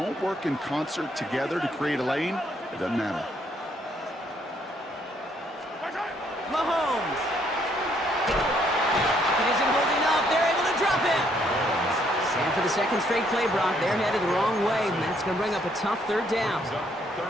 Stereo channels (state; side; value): normal; both; correlation 0.69